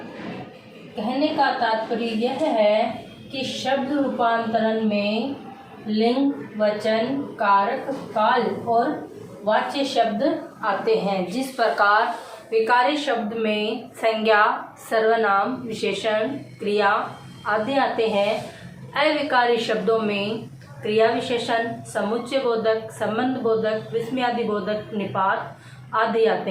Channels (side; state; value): both; identical; correlation 1.00